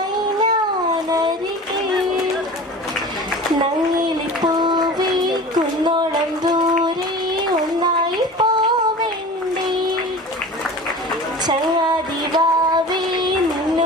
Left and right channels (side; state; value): both; normal; correlation 0.37